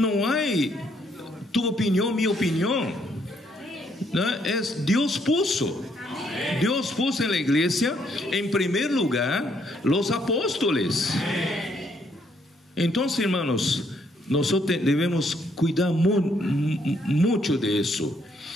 hay tu opinión, mi opinión, ¿no? Es Dios puso en la iglesia, en primer lugar, los apóstoles. Entonces, hermanos, nosotros debemos cuidar mucho de eso.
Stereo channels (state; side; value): normal; both; correlation 0.71